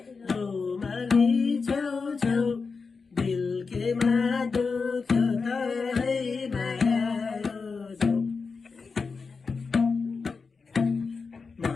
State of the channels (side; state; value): right; quieter; 4.8 dB